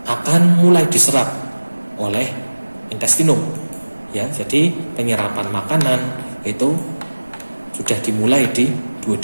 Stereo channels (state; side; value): inverted; both; correlation -1.00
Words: akan mulai diserap oleh intestinum ya. Jadi penyerapan makanan itu sudah dimulai di